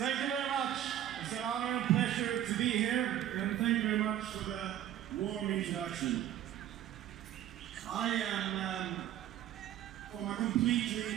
you very much. It's an honor and pleasure to be here, and thank you very much for the warm introduction. I am from a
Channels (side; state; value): left; quieter; 11.7 dB